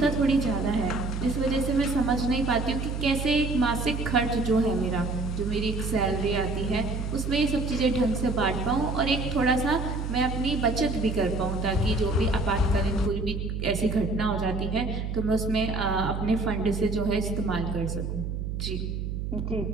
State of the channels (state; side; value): noise; right; hum, 4 dB below the sound